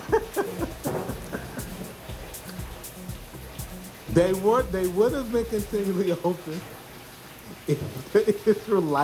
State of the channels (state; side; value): identical; both; correlation 1.00